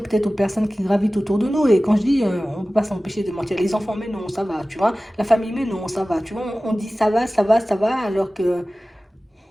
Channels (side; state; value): both; normal; correlation 0.97